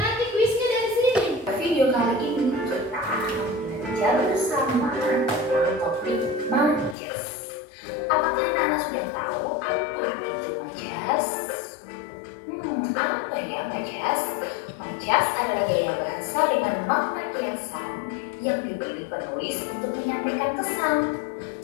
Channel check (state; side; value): drops out; right; at 7.0 s